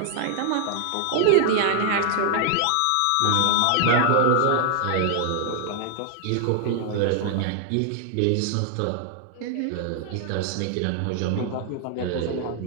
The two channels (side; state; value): both; different; correlation 0.00